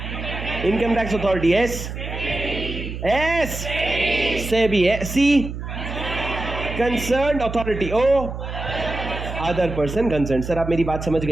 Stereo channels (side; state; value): right; noise; hum, 7 dB below the sound